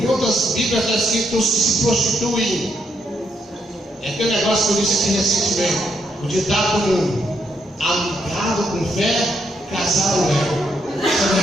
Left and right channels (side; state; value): both; normal; correlation 0.76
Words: Em outras Bíblias está escrito os que se prostituem. É aquele negócio que eu disse aqui recentemente. O ditado comum: amigado com fé, casado é. Isso é